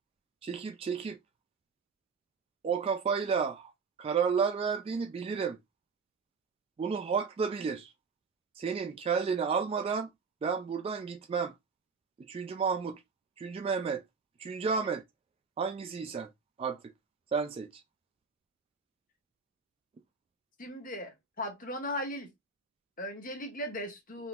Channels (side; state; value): left; quieter; 5.1 dB